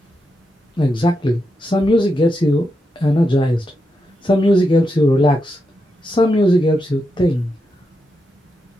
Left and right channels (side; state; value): both; normal; correlation 0.85